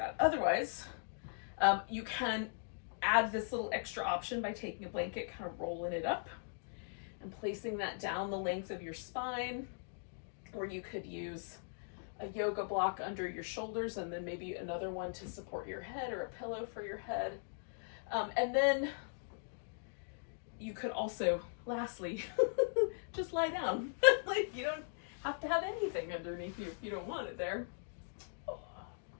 Otherwise, you can add this little extra option by taking a blanket, kind of rolling it up and placing that down the length of your spine. Or you could use a yoga block under your shoulders and then maybe another one to support your head or a pillow for your head. And then you could also, lastly, just lie down. Like, you don't have to have anything underneath you if you don't want it there.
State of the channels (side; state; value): right; silent; digital silence